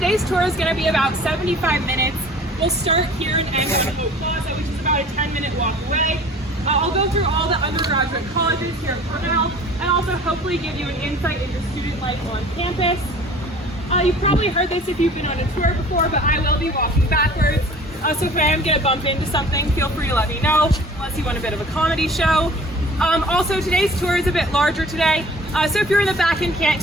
tour is going to be about 75 minutes. We'll start here and end on Hope Plaza, which is about a 10-minute walk away. I'll go through all the undergraduate colleges here at Cornell and also hopefully give you an insight into student life on campus. You've probably heard this if you've been on a tour before, but I will be walking backwards. So if I am going to bump into something, feel free to let me know, unless you want a bit of a comedy show. Also, today's tour is a bit larger today, so if you're in the back and can't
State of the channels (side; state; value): both; normal; correlation 0.47